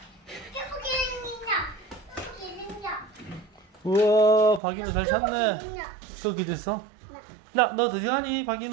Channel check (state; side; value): drops out; left; at 4.6 s